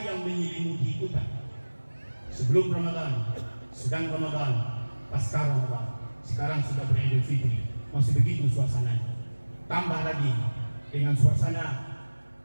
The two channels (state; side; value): inverted; both; correlation -1.00